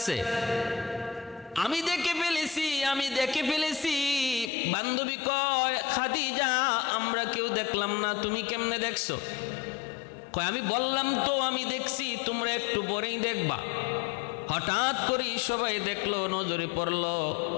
আমি দেখে ফেলেছি। বান্ধবী কয় খাদিজা আমরা কেউ দেখলাম না, তুমি কেমনে দেখছো? কয় আমি বললাম তো আমি দেখছি, তোমরা একটু পরেই দেখবা। হঠাৎ করে সবাই দেখলো, নজরে পড়লো।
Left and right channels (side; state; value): right; drops out; at 4.5 s